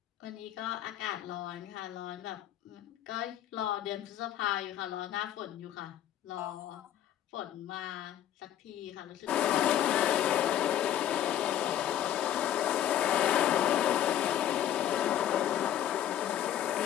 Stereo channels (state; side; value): quieter; right; 11.2 dB